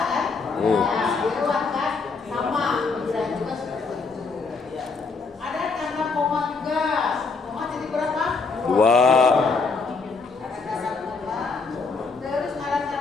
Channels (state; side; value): quieter; right; 4.4 dB